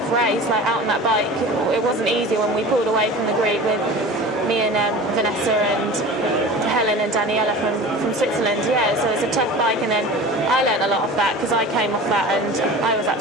race, like out on that bike. It wasn't easy when we pulled away from the group with me and Vanessa and Helen and Daniela from Switzerland. So it's a tough bike, and then I learned a lot off that because I came off that and I was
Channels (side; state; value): both; normal; correlation 0.36